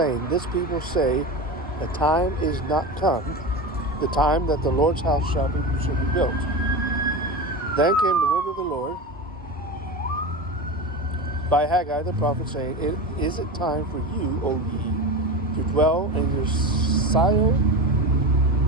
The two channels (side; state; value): both; normal; correlation 0.25